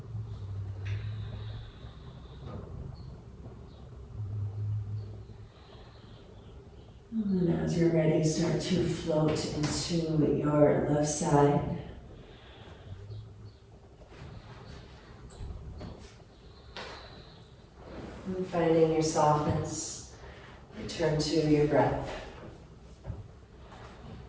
And as you're ready, start to float into your left side. finding your softness. Return to your breath.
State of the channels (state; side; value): identical; both; correlation 1.00